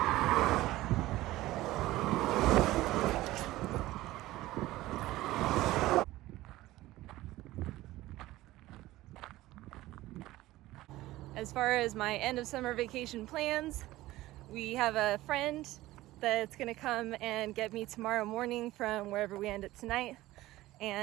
As far as my end of summer vacation plans, we have a friend that's gonna come and get me tomorrow morning from wherever we end up tonight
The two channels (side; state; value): left; quieter; 16.9 dB